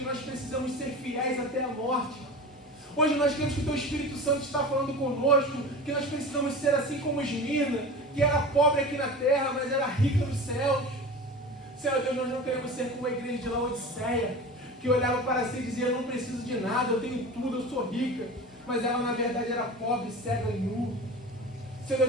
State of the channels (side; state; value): both; normal; correlation 0.33